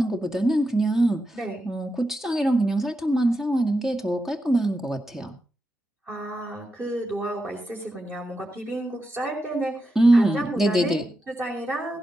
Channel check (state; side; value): normal; both; correlation 0.88